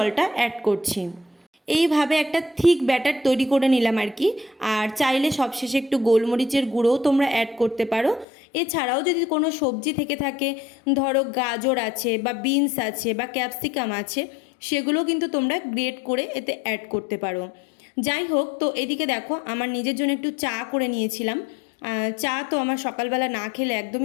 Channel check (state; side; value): drops out; right; at 8.2 s